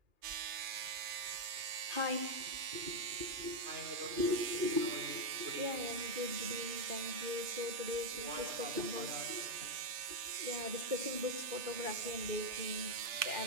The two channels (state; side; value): late; left; 3.3 ms